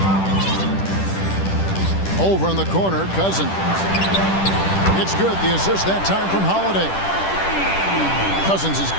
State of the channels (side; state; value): right; late; 10 ms